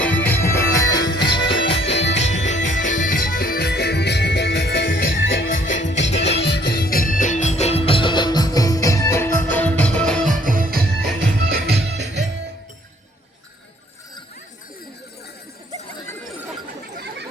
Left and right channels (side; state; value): both; normal; correlation 0.62